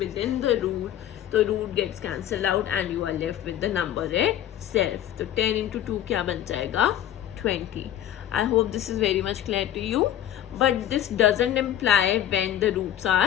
the root, तो root gets cancelled out and you are left with the number itself. तो 10 into 2 क्या बन जाएगा? 20. I hope this is very much clear to you. But this doesn't imply when the roots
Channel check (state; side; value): quieter; right; 11.5 dB